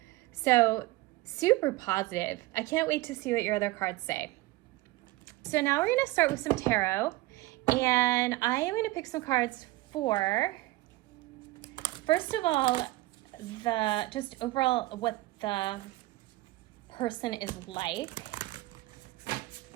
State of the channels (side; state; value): left; quieter; 19.5 dB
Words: So super positive. I can't wait to see what your other cards say. So now we're gonna start with some tarot, and I am gonna pick some cards for, first of all, just overall what the person is like.